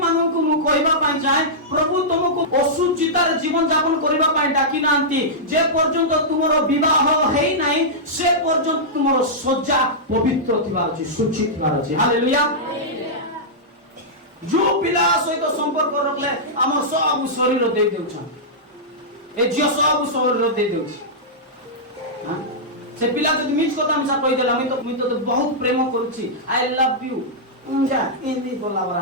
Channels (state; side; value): normal; both; correlation -0.11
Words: মানଙ୍କୁ ମୁଁ କହିବା ପାଇଁ ଚାହେଁ, প্রভু তোমাকে অশুচিতার জীবন যাপন করিবা পাই ডাকি নাহান্তি। যে পর্যন্ত তোমার বিবাহ হেই নাই, সে পর্যন্ত তোমার সজ্জা পবিত্র থিবার আছে, শুচি থিবার আছে। হালেলুয়া। जो पिला सहित संपर्क रखले हमर सब शरीर दे देउछन, ए जियो सब शरीर दे देउछ। हां से पिला जदि मिछ कथा हमसा कहि देला, मी तो बहुत प्रेम करूची, आई लव यू जा इनी बोला बरा